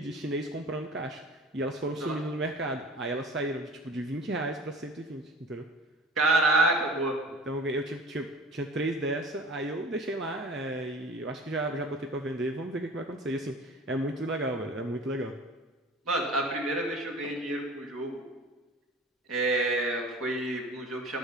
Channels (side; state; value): both; normal; correlation 0.42